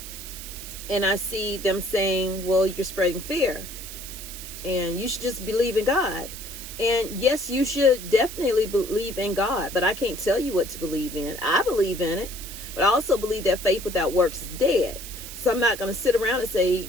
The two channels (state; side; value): noise; right; hiss, 11 dB below the sound